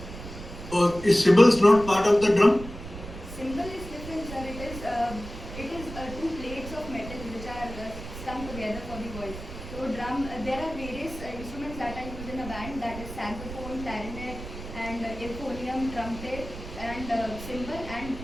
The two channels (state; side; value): noise; right; rumble, 11 dB below the sound